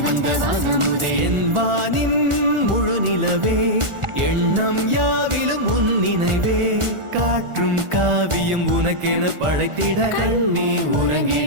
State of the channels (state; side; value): late; left; 1.4 ms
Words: வந்த வாசமுதே என் வானின் முழு நிலவே எண்ணம் யாவிலும் உன் நினைவே காற்றும் காவியம் உனக்கென படைத்திட கண்ணே